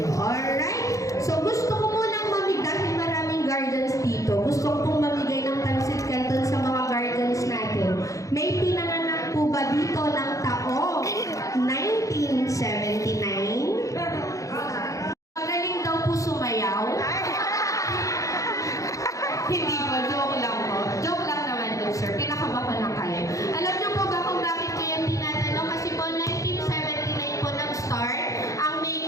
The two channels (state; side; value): late; right; 0.16 ms